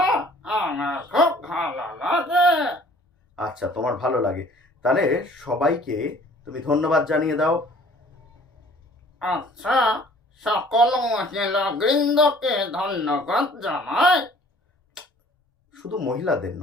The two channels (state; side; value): normal; both; correlation 0.53